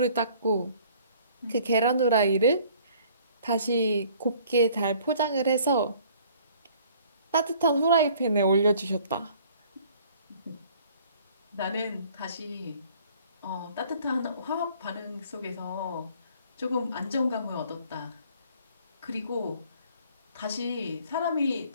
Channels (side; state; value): both; inverted; correlation -0.55